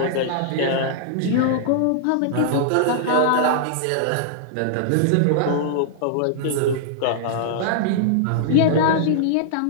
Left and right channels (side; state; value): both; different; correlation -0.01